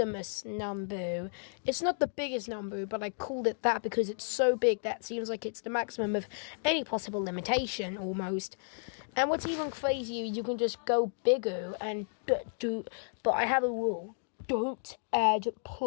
number. It's not the biggest number, but I called it that because it's so big that seems like it's the maximum of any possible limitation almost. And what's even crazier, you can just go bigger and but I have a rule: don't add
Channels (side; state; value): right; silent; digital silence